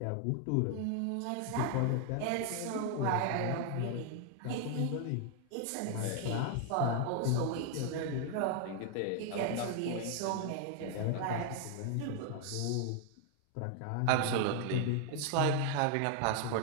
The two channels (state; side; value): different; both; correlation 0.00